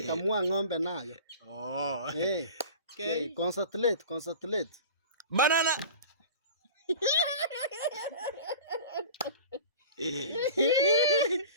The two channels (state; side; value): inverted; both; correlation -0.38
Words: kamua ng'ombe nayo. Okay. Concentrate. Banana.